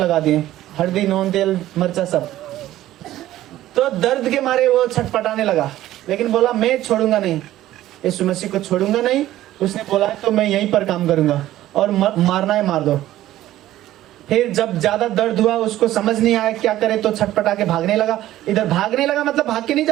दिए, हल्दी, नून, तेल, मिर्चा सब। तो दर्द के मारे वो छटपटाने लगा, लेकिन बोला मैं छोड़ूंगा नहीं, यीशु मसीह को छोड़ूंगा नहीं। उसने बोला तो मैं यहीं पर काम करूंगा और मारना है मार दो। फिर जब ज्यादा दर्द हुआ, उसको समझ नहीं आया क्या करे, तो छटपटा के भागने लगा। इधर भागने लगा मतलब भाग के नहीं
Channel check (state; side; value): quieter; left; 14.2 dB